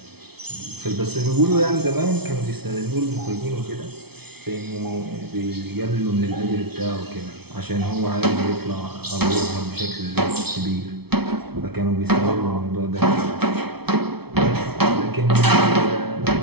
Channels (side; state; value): left; late; 0.97 ms